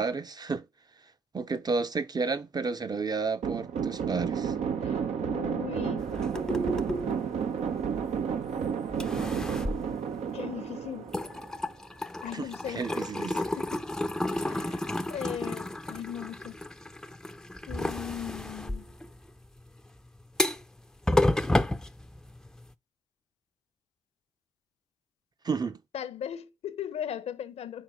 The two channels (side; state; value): both; normal; correlation 0.71